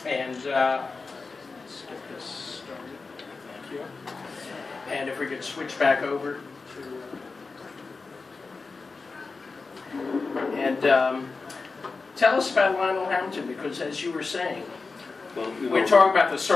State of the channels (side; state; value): right; quieter; 4.2 dB